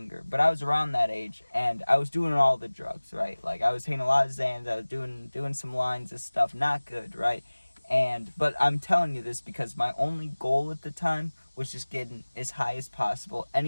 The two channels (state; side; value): inverted; both; correlation -1.00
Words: but I was around that age, and I was doing all the drugs, right? Like I was taking a lot of Xans, I was doing some lines of stuff, not good, right? But I'm telling you this because my only goal at the time was just getting as high as possible,